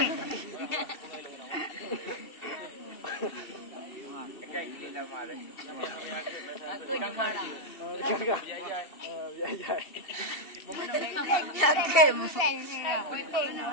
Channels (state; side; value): late; right; 2.7 ms